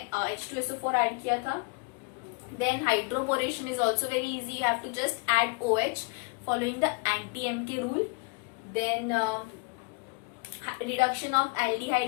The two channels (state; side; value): quieter; right; 30.6 dB